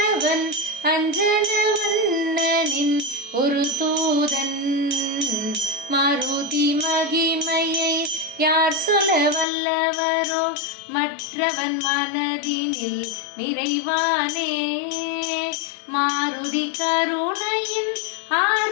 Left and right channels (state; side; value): drops out; right; at 9.5 s